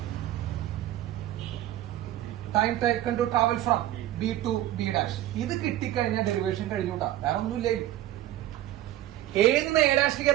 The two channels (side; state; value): left; quieter; 13.7 dB